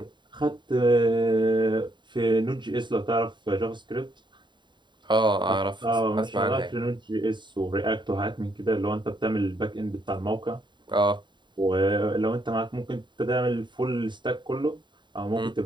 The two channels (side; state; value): left; late; 0.22 ms